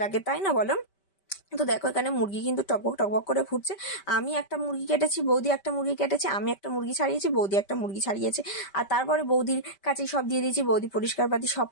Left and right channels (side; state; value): right; late; 5.1 ms